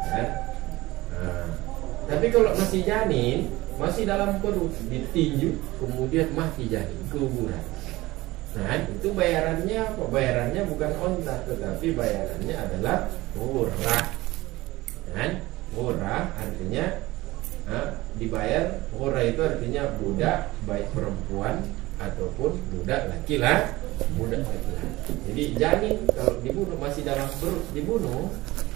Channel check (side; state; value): left; quieter; 19.2 dB